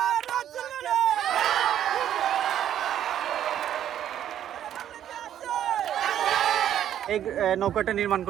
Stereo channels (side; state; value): left; quieter; 10.7 dB